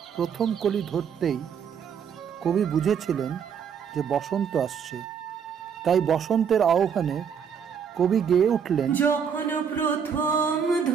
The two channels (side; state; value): left; quieter; 7.3 dB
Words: প্রথম কলি ধরতেই কবি বুঝেছিলেন যে বসন্ত আসছে। তাই বসন্তের আহ্বানে কবি গেয়ে উঠলেন, যখন প্রথম